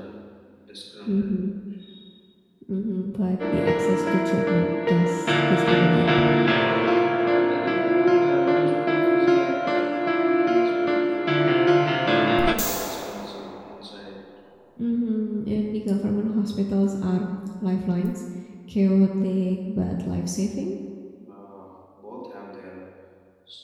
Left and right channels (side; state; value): both; identical; correlation 1.00